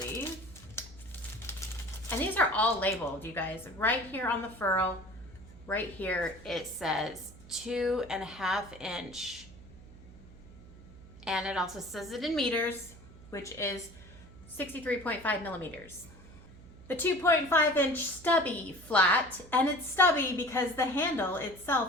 And these are all labeled, you guys. Right here on the ferrule, right here, it says 2.5 inch. And it also says it in meters, which is 63.5 millimeters. The 2.5 inch stubby flat, and it's stubby because the handle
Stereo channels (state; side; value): noise; right; hum, 19 dB below the sound